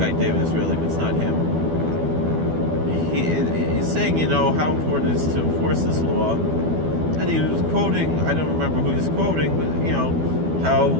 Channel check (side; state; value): left; late; 12 ms